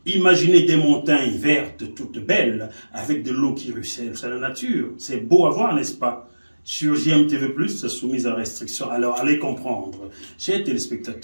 Imaginez des montagnes vertes, toutes belles, avec de l'eau qui ruisselle. C'est la nature. C'est beau à voir, n'est-ce pas? Sur JMTV+, c'est soumis à restriction. Alors, allez comprendre. Chers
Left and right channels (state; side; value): inverted; both; correlation -1.00